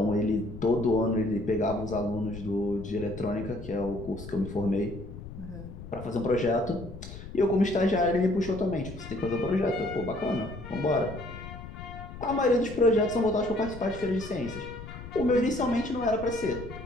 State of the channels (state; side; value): noise; left; rumble, 12 dB below the sound